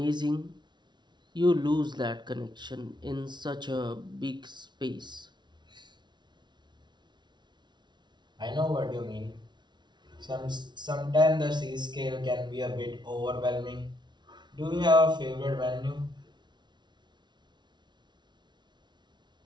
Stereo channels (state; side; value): late; left; 0.21 ms